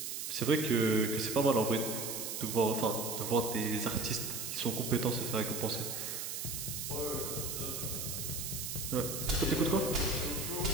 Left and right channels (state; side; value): noise; right; hiss, 4 dB below the sound